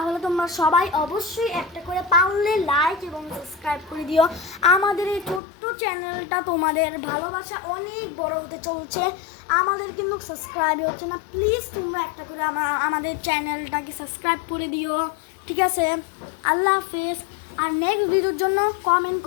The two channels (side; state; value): right; drops out; at 5.4 s